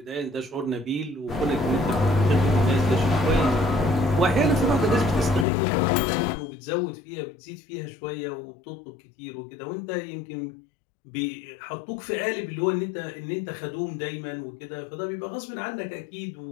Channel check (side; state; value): right; drops out; at 5.5 s